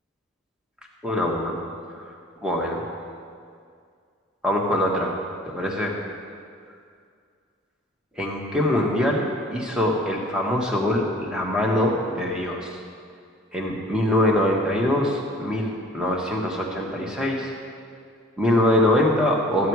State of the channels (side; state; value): both; normal; correlation 0.50